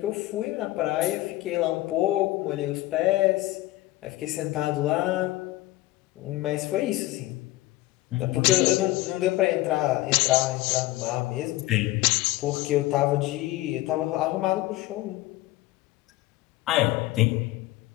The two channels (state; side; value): quieter; right; 17.8 dB